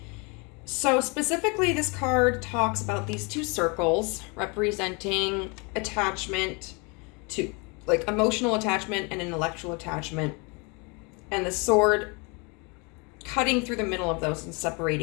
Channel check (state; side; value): quieter; right; 30.7 dB